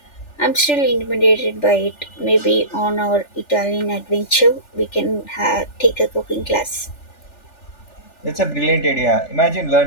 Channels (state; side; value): late; right; 3.4 ms